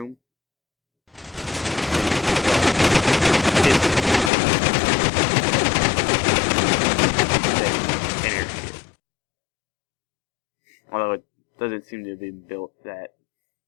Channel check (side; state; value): right; drops out; at 4.3 s